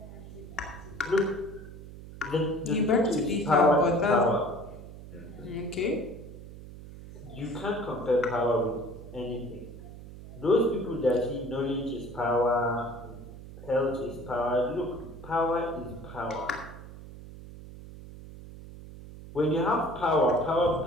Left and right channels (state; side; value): noise; right; hum, 14 dB below the sound